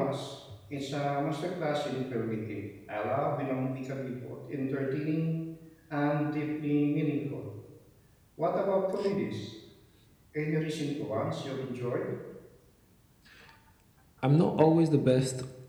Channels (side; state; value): both; identical; correlation 1.00